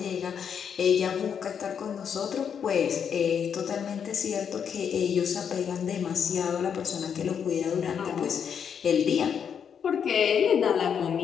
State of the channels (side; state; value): right; quieter; 7.5 dB